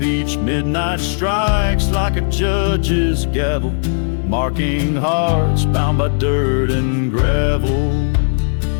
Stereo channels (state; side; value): silent; right; digital silence